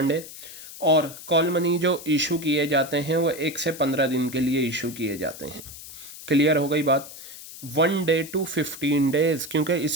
है, और कॉल मनी जो इशू किए जाते हैं वो 1 से 15 दिन के लिए इशू किए जाते हैं। क्लियर हो गई बात। 1 डे to 15 डेज़, क्योंकि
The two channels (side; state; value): left; noise; hiss, 14 dB below the sound